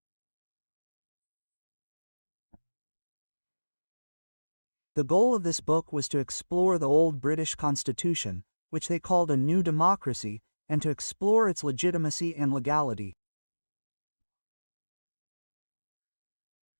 The goal of this book was to explore the old British Constitution, which they called a new democracy, and to explore its legitimacy and legality.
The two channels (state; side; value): inverted; both; correlation -1.00